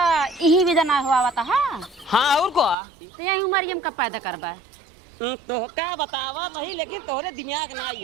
यही विधा ना हुआ था। हाँ और को तो यही उम्र हम कब पैदा करबा तो क्या बतावा नहीं लेकिन तोहरे दिमाग ना आई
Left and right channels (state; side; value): drops out; left; at 2.8 s